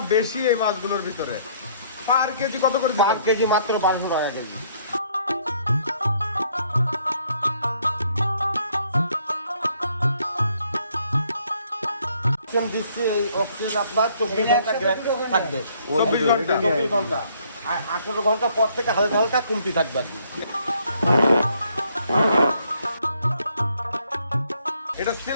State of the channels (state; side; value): inverted; both; correlation -0.66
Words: বেশি এই মাছগুলোর ভিতরে। পার কেজি কত করে পার দিবেন? কেজি মাত্র 1200 টাকা কেজি। দিচ্ছি এই অক্সিজেন আপনার 24 ঘন্টা থাকবে। 24 ঘন্টা আর 18 ঘন্টা পর থেকে হালকা হালকা কমতি থাকবে আর কি। এটা